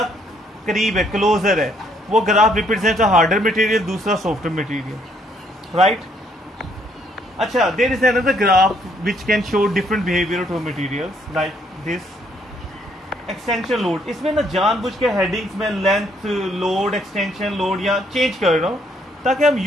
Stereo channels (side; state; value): both; normal; correlation 0.68